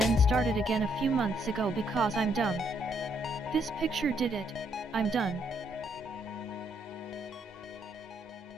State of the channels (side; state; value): both; normal; correlation 0.72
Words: started again a few months ago because I'm dumb. This picture did it. I'm done.